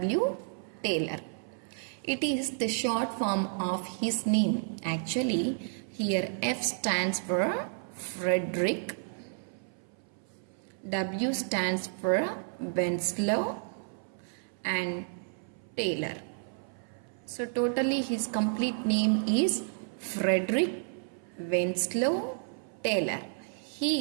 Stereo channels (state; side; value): silent; left; 57 dB below the other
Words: Taylor. It is the short form of his name. Actually, here F stands for Frederick, W stands for Winslow, and Taylor. So totally his complete name is Frederick Winslow Taylor.